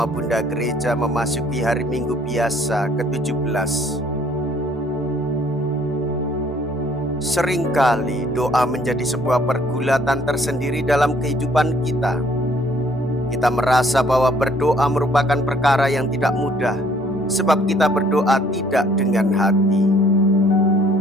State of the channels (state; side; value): normal; both; correlation 0.61